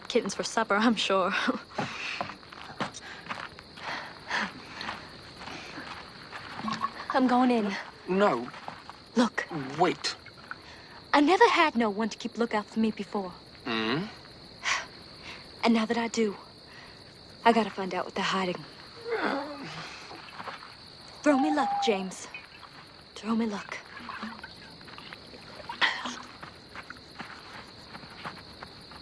kittens for supper, I'm sure. I'm going in. No. Look, Wait. I never had no one to keep lookout for me before. Hmm? And now that I do, I gotta find out what they're hiding. Throw me luck, James. Throw me luck.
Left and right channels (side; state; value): both; identical; correlation 1.00